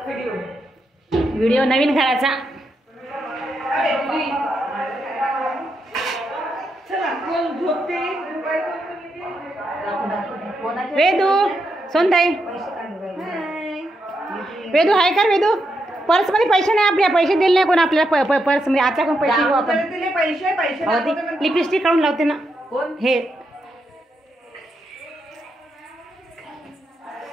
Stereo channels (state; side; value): normal; both; correlation 0.82